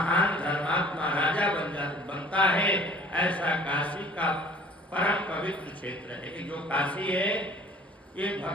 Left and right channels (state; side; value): normal; both; correlation 0.49